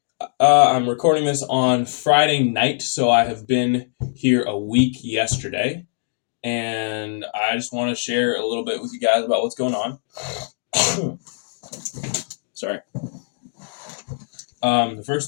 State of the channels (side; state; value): right; silent; digital silence